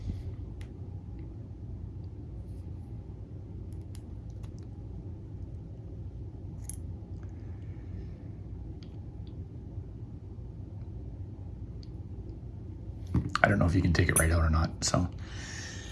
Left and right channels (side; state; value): both; identical; correlation 1.00